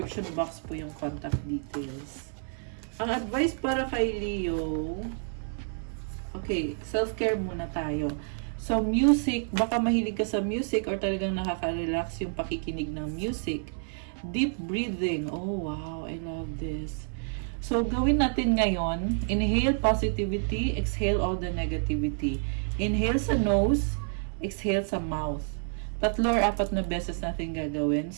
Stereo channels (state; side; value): silent; left; 56 dB below the other